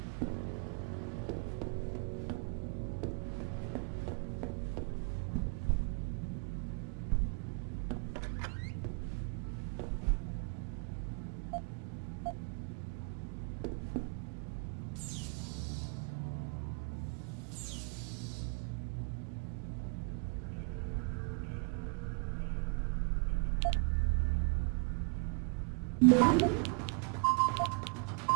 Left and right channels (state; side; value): quieter; left; 37.1 dB